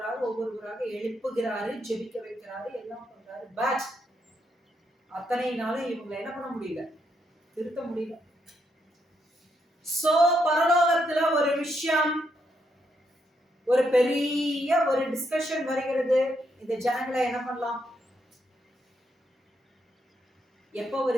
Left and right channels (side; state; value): both; normal; correlation 0.78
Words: எழுப்புகிறாரு, ஜெபிக்க வைக்கிறாரு, எல்லாம் பண்றாரு. பட் அத்தனை நாளும் இவங்களை என்ன பண்ண முடியல, திருத்த முடியல. சோ பரலோகத்துல ஒரு விஷயம், ஒரு பெரிய ஒரு டிஸ்கஷன் வருகிறது. இந்த ஜனங்களை என்ன பண்ணலாம்? எப்போ